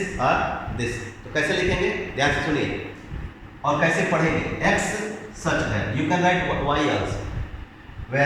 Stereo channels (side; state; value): both; identical; correlation 1.00